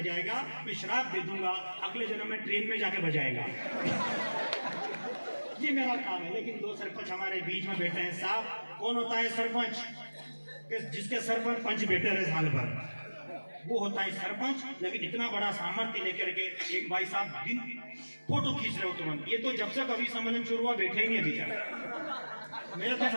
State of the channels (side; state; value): both; inverted; correlation -1.00